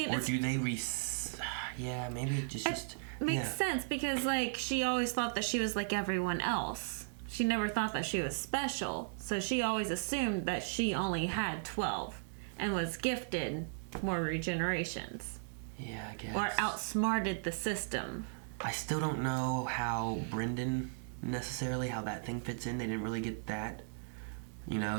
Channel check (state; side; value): silent; left; digital silence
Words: Or do they yeah, maybe it just makes yeah. sense because, like, she always thought that she was like everyone else. She never thought that she was special. So she always assumed that she only had 12 and was gifted more regenerations. Yeah, I guess. Or outsmarted the system. I still don't know how Brendan necessarily, how that thing fits in. They didn't really get that. You know,